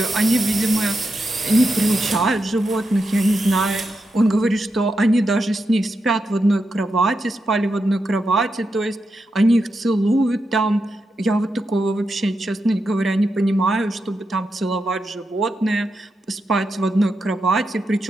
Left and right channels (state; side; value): normal; both; correlation 0.86